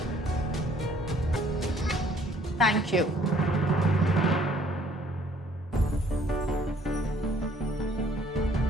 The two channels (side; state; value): both; normal; correlation 0.60